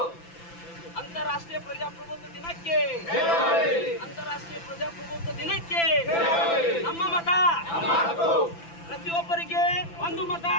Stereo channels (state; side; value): late; right; 5.9 ms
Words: ಅಂತಾರಾಷ್ಟ್ರೀಯ ಪ್ರಜಾಪ್ರಭುತ್ವ ದಿನಕ್ಕೆ, ಅಂತಾರಾಷ್ಟ್ರೀಯ ಪ್ರಜಾಪ್ರಭುತ್ವ ದಿನಕ್ಕೆ ನಮ್ಮ ಮತ. ಪ್ರತಿಯೊಬ್ಬರಿಗೆ ಒಂದು ಮತ,